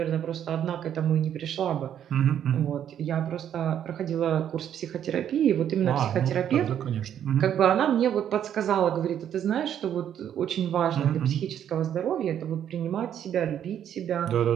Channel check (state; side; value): quieter; left; 9.8 dB